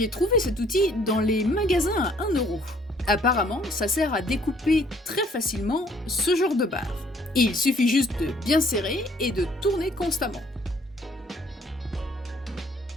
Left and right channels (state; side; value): normal; both; correlation 0.61